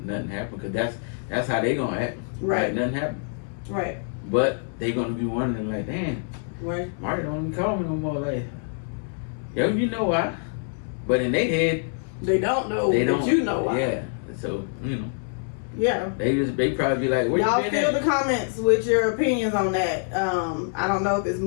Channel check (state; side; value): silent; right; 61 dB below the other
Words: happened. Because that's how they gonna act. Right. Like nothing happened. Right. But they gonna be wondering like, damn, Right. Marty don't even call me no more. Like, yo, you know why? But in their head, They don't know they that don't. you know why. Yeah. So, Yeah. they probably be like, where Y'all you been fill at? the comments with your opinions on that. I don't know if it's